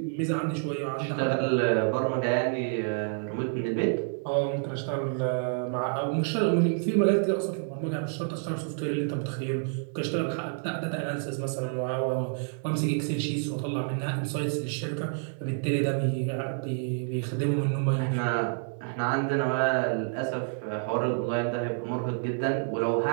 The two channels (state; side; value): silent; left; 59 dB below the other